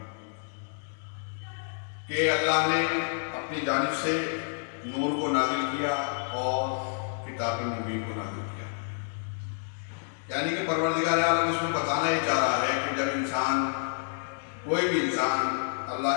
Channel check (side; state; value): right; silent; digital silence